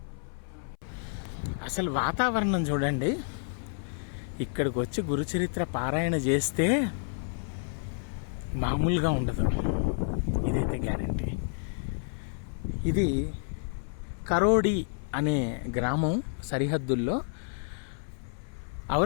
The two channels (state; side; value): silent; right; 57 dB below the other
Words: అసలు వాతావరణం చూడండి, ఇక్కడికి వచ్చి గురుచరిత్ర పారాయణ చేస్తే మామూలుగా ఉండదు, ఇదైతే గ్యారంటీ. ఇది కరోడి అనే గ్రామం సరిహద్దుల్లో